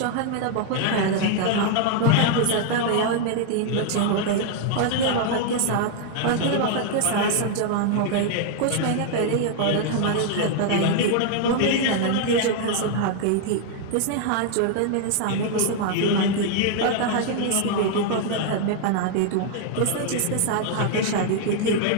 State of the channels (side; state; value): both; different; correlation 0.00